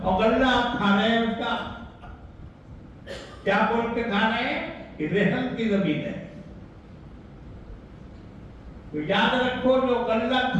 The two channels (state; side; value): identical; both; correlation 1.00